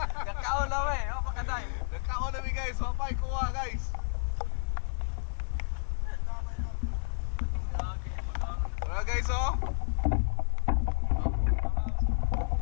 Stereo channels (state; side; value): silent; right; digital silence